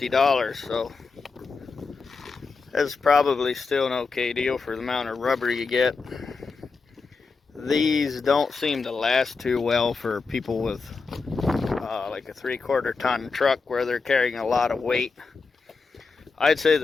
so that's probably still an okay deal for the amount of rubber you get. These don't seem to last too well for people with like a 3/4 ton truck where they're carrying a lot of weight. I'd say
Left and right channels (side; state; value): right; quieter; 4.6 dB